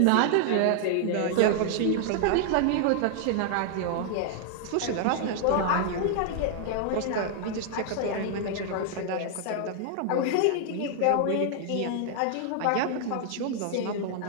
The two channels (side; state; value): both; different; correlation -0.01